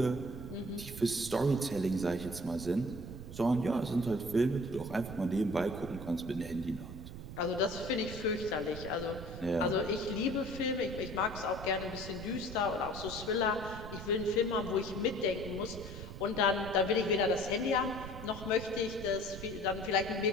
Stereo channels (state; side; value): noise; right; rumble, 10 dB below the sound